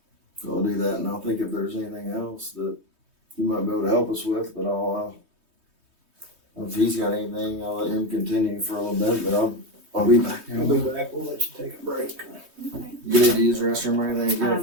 So I'll do that, and I'll think if there's anything else that you might be able to help us with, but if he's got anything, I'll let him continue for a little bit, but I'll be back. I'll be back. We'll let you take a break. Okay. You need to use the restroom or anything?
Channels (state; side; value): late; left; 3.2 ms